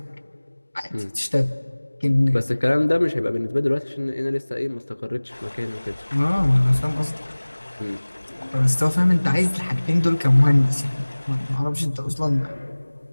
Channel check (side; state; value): both; inverted; correlation -1.00